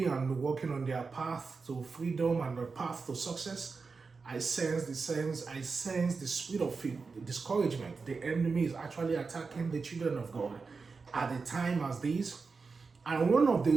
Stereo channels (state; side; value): quieter; left; 4.6 dB